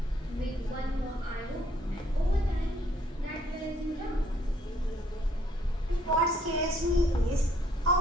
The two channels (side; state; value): both; normal; correlation 0.66